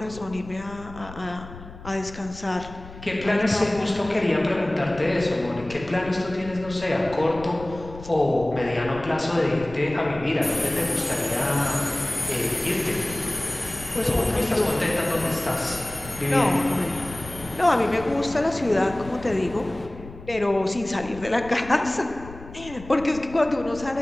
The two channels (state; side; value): noise; left; rumble, 16 dB below the sound